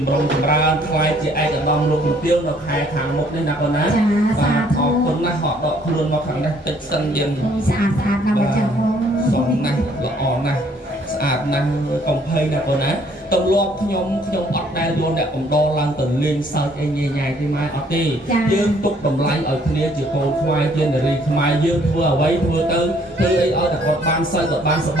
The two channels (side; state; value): both; normal; correlation 0.62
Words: ម្រុងចម្រើនខ្លាយជាឯកឧត្តមលោកជំទាវនៅខែខាងមុខនេះណាកូនណាបាទអរគុណណាស់ហត់ដកខ្លួនមកខាងនេះតិចសិនយើងស្អាតស្អាតណាស់មកចឹងសុំណាស់ល្អណាស់ស្អាតណាស់កំភៃណាកូនណាទម្លាប់ខ្ញុំអត់ដែលយកអ្នកកំដរឡើងទៅលេងសើចអីញ៉ៃញ៉ៃទេម៉ែអត់ទេយើងទុកតម្លៃឲ្យគ្នាជាកូនខ្មែរជានារីខ្មែរយើងធ្វើអ្វីធ្វើទៅធ្វើអីឲ្យតែគាត់បានសើចគាត់បានសប្